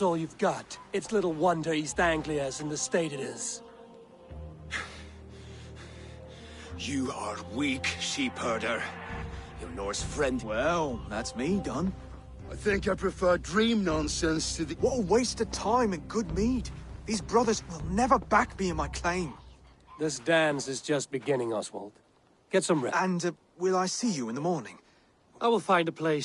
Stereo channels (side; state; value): both; identical; correlation 1.00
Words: all you've got, it's little wonder East Anglia's in the state it is. You are weak, sheep herder. Your Norse friend. Well, that's me done. I think I prefer dream nonsense to the... What a waste of time and good mead. These brothers will never back me in my claim. This dance is just beginning, Oswald. Get some rest. And will I see you in the morning? I will find a